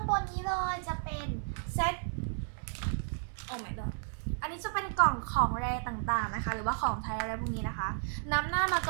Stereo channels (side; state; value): left; silent; 56 dB below the other